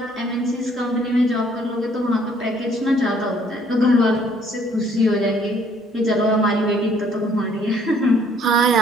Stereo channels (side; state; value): both; normal; correlation 0.62